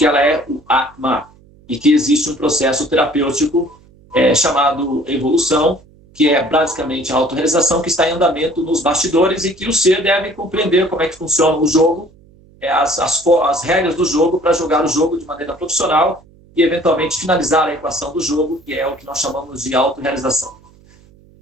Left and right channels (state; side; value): noise; right; hum, 28 dB below the sound